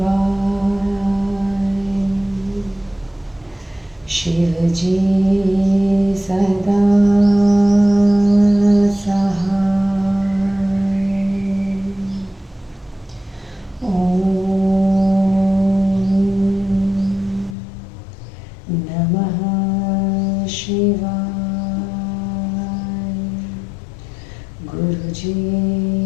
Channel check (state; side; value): drops out; right; at 17.6 s